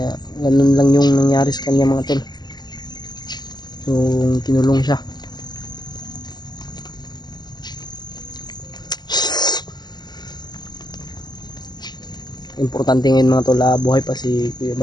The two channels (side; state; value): right; late; 0.21 ms